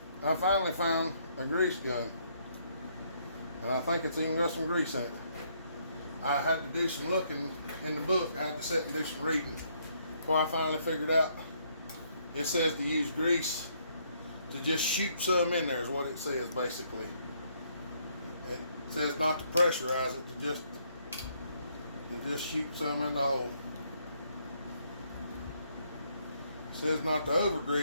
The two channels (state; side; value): inverted; both; correlation -0.70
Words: I finally found a grease gun. And I think it's even got some grease in it. I had to do some looking in the book. I had to sit and do some reading before I finally figured out. It says to use grease to just shoot some in there is what it says basically. It says not to pressurize it, to just shoot some in the hole. It says not to over